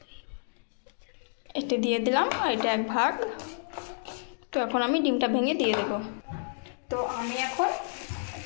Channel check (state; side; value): silent; right; digital silence